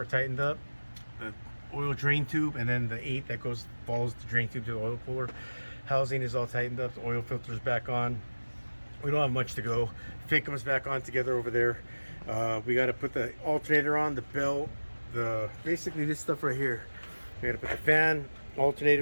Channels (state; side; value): inverted; both; correlation -1.00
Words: tightened up. The oil drain tube, and then the 8 that follows the drain tube to the oil cooler housing is all tightened up. The oil filter's back on. We don't have much to go. FICM's back on together over there. We got to put the alternator on, the belt, basically this stuff right here. We got to put the fan,